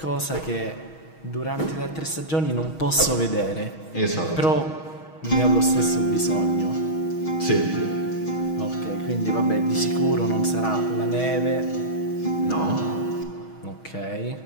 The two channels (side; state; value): right; late; 6.3 ms